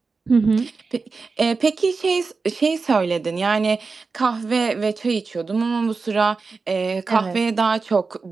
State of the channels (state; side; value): quieter; left; 4.4 dB